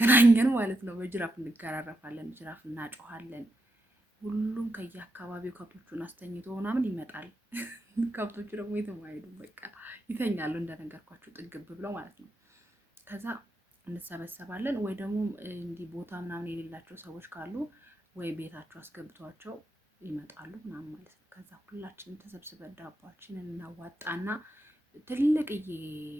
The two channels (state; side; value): normal; both; correlation 0.84